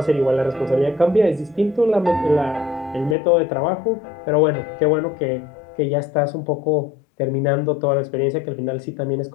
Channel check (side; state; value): right; drops out; at 3.2 s